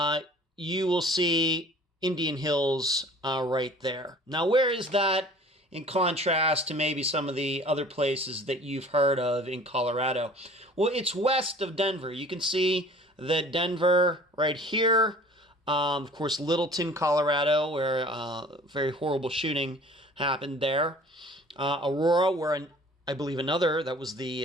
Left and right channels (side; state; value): both; normal; correlation 0.48